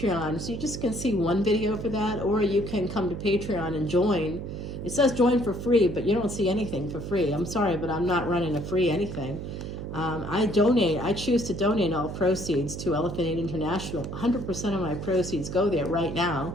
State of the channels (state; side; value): noise; right; hum, 7 dB below the sound